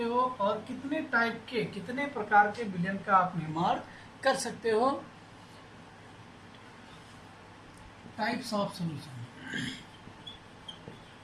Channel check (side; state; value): both; identical; correlation 1.00